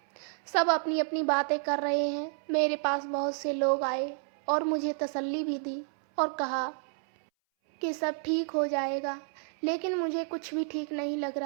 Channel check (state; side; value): silent; left; 58 dB below the other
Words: सब अपनी अपनी बातें कर रहे हैं। मेरे पास बहुत से लोग आए और मुझे तसल्ली भी दी और कहा कि सब ठीक हो जाएगा, लेकिन मुझे कुछ भी ठीक नहीं लग